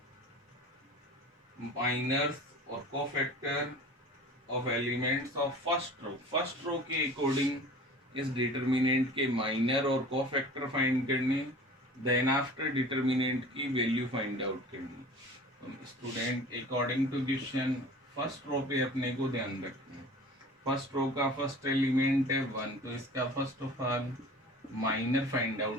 माइनर्स और cofactor of elements of first row के अकॉर्डिंग इस डिटर्मिनेंट के माइनर और कोफैक्टर फाइंड करने, देन आफ्टर डिटर्मिनेंट की वैल्यू फाइंड आउट करनी। तो student according to question first row पे अपने को ध्यान रखना है। फर्स्ट रो का फर्स्ट एलिमेंट है 1, तो इसका first of all minor find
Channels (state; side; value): normal; both; correlation 0.41